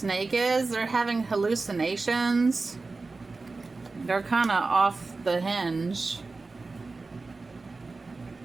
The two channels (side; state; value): left; quieter; 3.8 dB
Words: is, they're having hallucinations. They're kind of off the hinge.